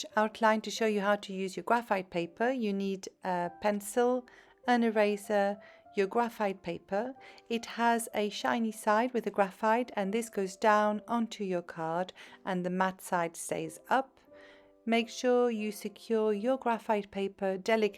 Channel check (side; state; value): both; identical; correlation 1.00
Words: outline to show you how to use your graphite paper. You need a pencil, an eraser, your graphite paper. It has a shiny side with the graphite and this goes down onto your card and the matte side stays up. Make sure you secure your graphite paper